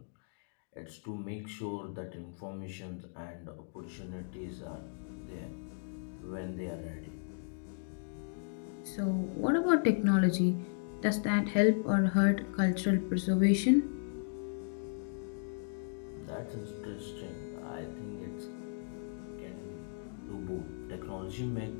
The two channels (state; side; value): silent; right; digital silence